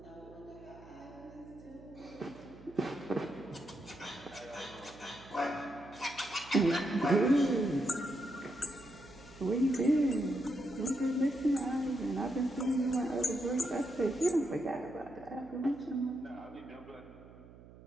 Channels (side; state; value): right; noise; hum, 19 dB below the sound